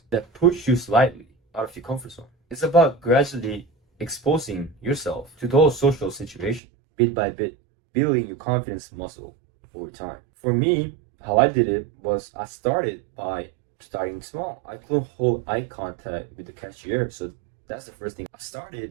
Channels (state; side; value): drops out; left; at 6.6 s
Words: that push you slightly out of your comfort zone. It's about gradually exposing yourself to those social situations, bit by bit, building your confidence muscle over time. For me, how I did it was I started by starting small. I couldn't hold eye contact with the cashier, so that's the first thing. I